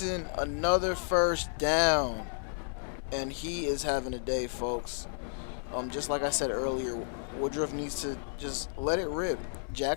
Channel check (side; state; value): right; silent; 56 dB below the other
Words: another first down. And he is having a day, folks. Just like I said earlier, Woodruff needs to just let it rip.